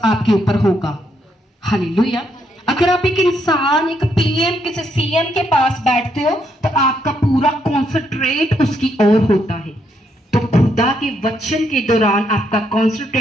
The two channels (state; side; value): normal; both; correlation 0.75